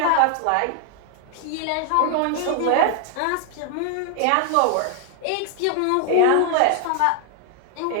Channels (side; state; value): both; different; correlation 0.00